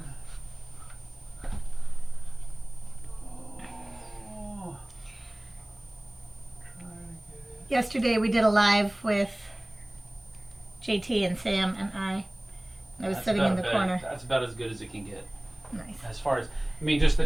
Oh. Try to get it. Yesterday we did a live with JT and Sam and I. I was That's sitting in about the better. corner. That's about as good as it can get. Nice. As far as, I mean, just the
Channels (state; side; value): noise; right; hiss, 29 dB below the sound